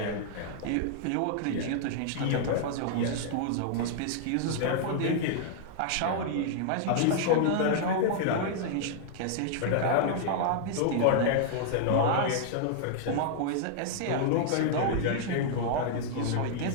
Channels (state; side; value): different; both; correlation -0.01